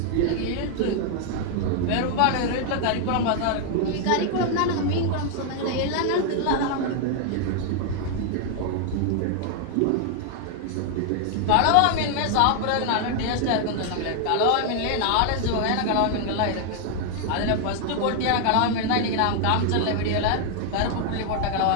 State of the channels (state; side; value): different; both; correlation 0.00